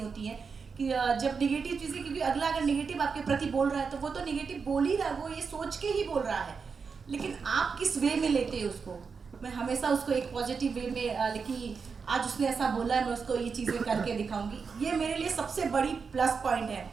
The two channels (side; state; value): left; quieter; 5.4 dB